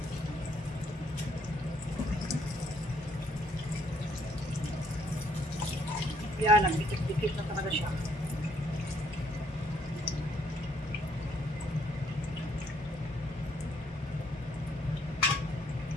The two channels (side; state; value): both; normal; correlation 0.67